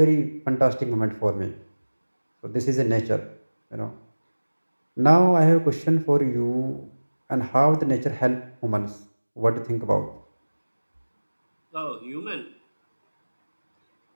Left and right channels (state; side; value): inverted; both; correlation -1.00